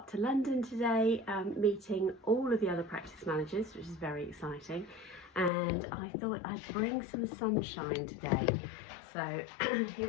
to London today, meeting all of the other practice managers, which is very exciting. And I thought I'd bring some sunshine today. So here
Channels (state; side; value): drops out; right; at 5.5 s